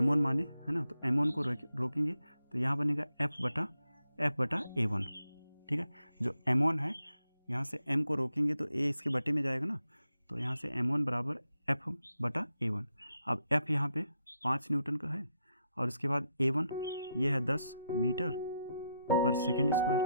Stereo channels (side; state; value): both; inverted; correlation -0.82